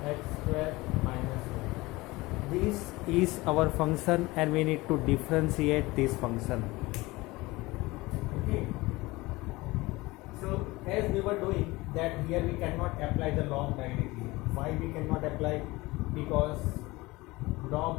x square minus 1. This is our function and we need to differentiate this function. Okay. So as we were doing that, here we cannot apply the log directly. Why we cannot apply? Because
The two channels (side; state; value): right; quieter; 21.3 dB